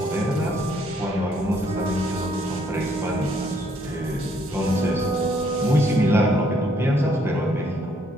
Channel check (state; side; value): normal; both; correlation 0.68